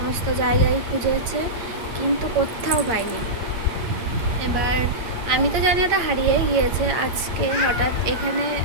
জায়গায় খুঁজেছে, কিন্তু কোথাও পাইনি। এবার আমি তো জানি ওটা হারিয়ে গিয়েছে। আজকে হঠাৎ এখানে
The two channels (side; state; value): left; late; 8.7 ms